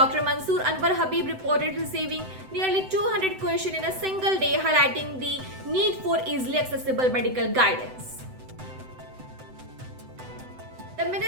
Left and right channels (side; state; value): left; late; 7.9 ms